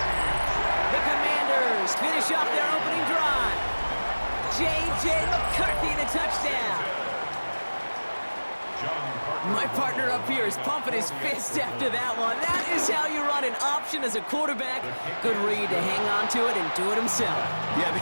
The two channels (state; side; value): inverted; both; correlation -1.00